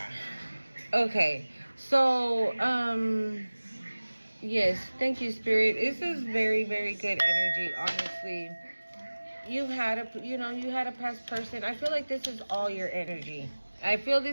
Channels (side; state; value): both; inverted; correlation -1.00